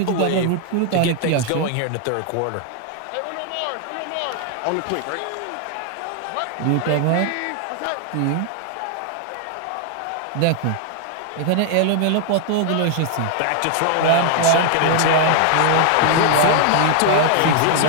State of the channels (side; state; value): both; different; correlation 0.00